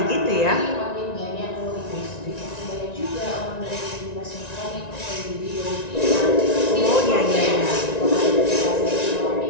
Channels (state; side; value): late; right; 1.9 ms